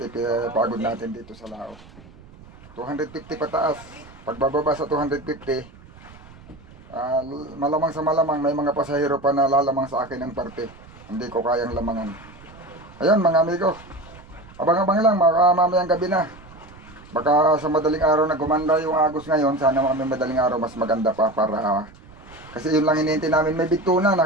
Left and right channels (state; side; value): noise; right; rumble, 22 dB below the sound